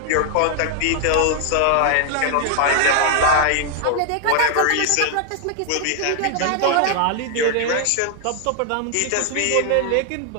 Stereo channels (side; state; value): both; different; correlation 0.00